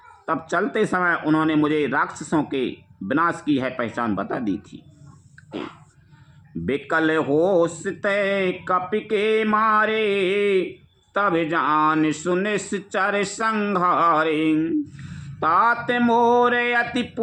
तब चलते समय उन्होंने मुझे राक्षसों के विनाश की है पहचान बता दी थी। बिकल होश तय कपि के मारे, तब जान सुनिश्चर संहारे। तात मोरे अति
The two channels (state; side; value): identical; both; correlation 1.00